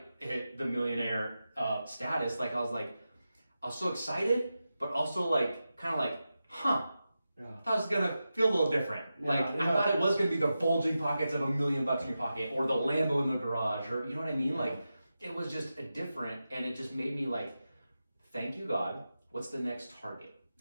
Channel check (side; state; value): both; inverted; correlation -0.91